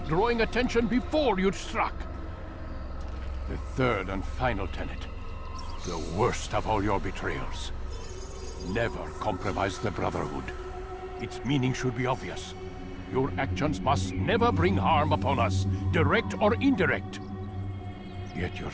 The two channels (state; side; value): identical; both; correlation 1.00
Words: drawing attention before you'd struck. The third and final tenet. The worst of all your betrayals. Never compromise the Brotherhood. Its meaning should be obvious. Your actions must never bring harm upon us, direct or indirect. Yet your